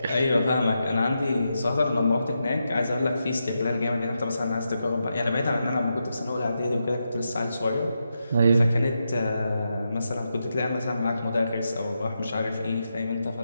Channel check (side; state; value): both; inverted; correlation -0.86